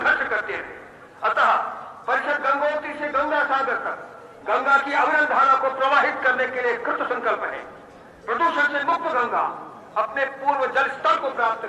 करते थे। अतः परिषद गंगोत्री से गंगा सागर तक गंगा की अविरल धारा को प्रवाहित करने के लिए कृत संकल्प है। प्रदूषण से मुक्त गंगा अपने पूर्व जल स्तर को प्राप्त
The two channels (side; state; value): both; identical; correlation 1.00